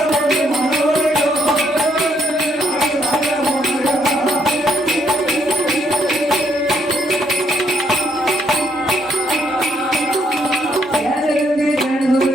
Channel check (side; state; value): both; normal; correlation 0.71